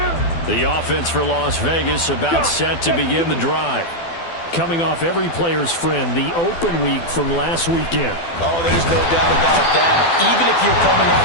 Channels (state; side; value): late; right; 12 ms